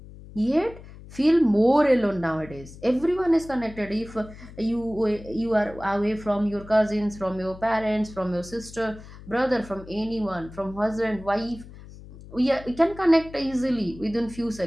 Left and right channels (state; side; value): noise; left; hum, 17 dB below the sound